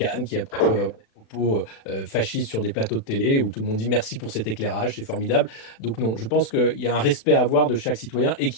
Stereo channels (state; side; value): late; right; 36 ms